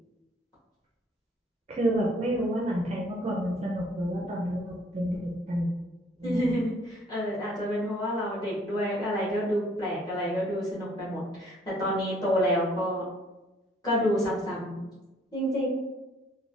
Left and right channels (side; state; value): both; normal; correlation 0.61